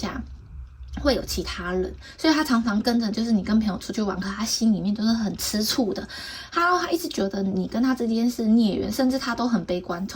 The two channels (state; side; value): identical; both; correlation 1.00